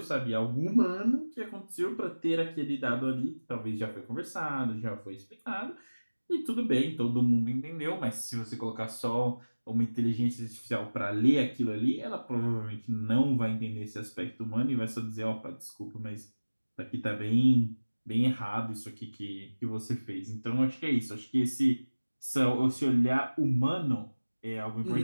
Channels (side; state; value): both; inverted; correlation -1.00